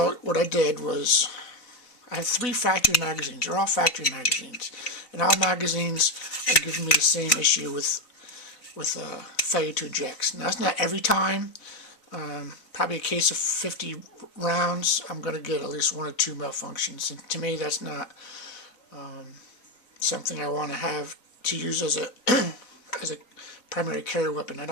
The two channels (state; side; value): late; right; 4.0 ms